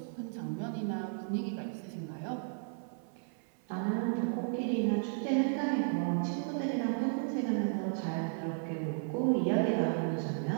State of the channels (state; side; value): silent; left; 55 dB below the other